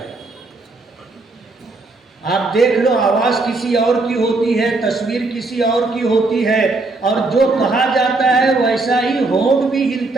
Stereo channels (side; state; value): left; quieter; 3.3 dB